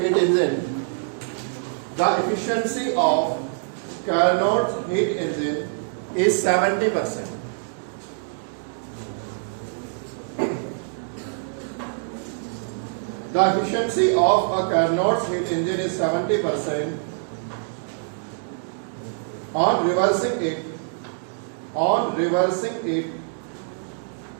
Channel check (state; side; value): silent; left; digital silence